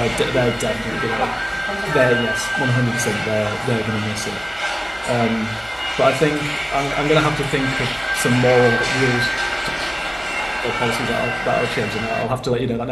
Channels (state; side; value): identical; both; correlation 1.00